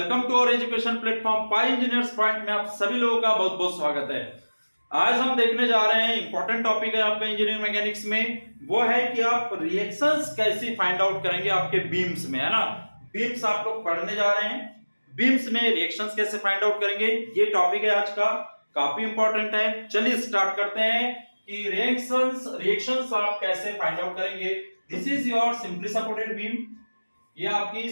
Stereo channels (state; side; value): inverted; both; correlation -1.00